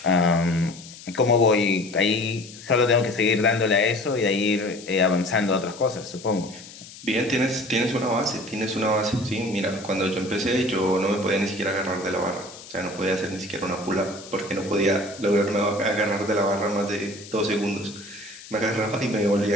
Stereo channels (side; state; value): left; noise; hiss, 17 dB below the sound